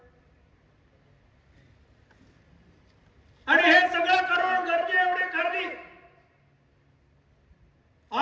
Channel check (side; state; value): both; identical; correlation 1.00